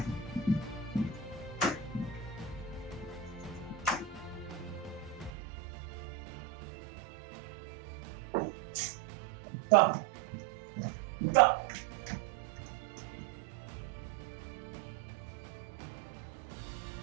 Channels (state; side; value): drops out; left; at 5.3 s